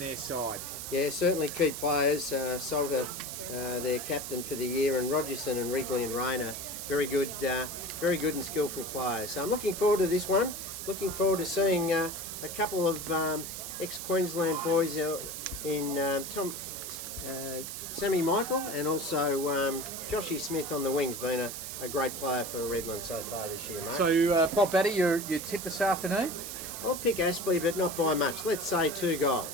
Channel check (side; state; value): right; noise; hiss, 7 dB below the sound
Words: side. Yeah, certainly key players. Salter, their captain for the year, and Rogerson and Wrigley and Rayner, very good and skillful players. So I'm looking forward to this one. Looking forward to seeing a couple of ex-Queensland boys in Sammy Michael and also Joshy Smith on the wings, being a great player for Redland so far this year, mate. So, Bob Batty, you tip this afternoon? I'll pick Aspley, but not by much. Let's say 2